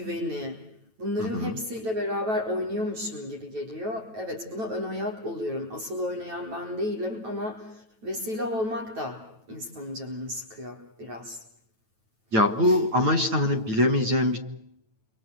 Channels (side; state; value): left; late; 9.1 ms